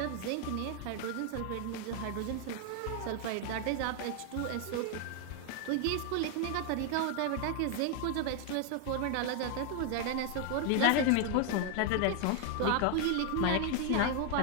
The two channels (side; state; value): both; different; correlation 0.00